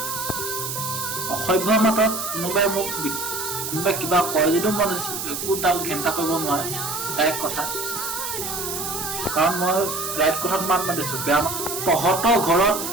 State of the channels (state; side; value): noise; right; hiss, 4 dB below the sound